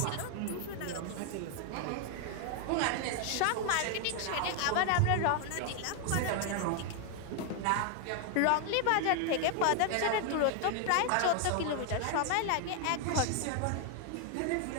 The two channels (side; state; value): both; different; correlation 0.00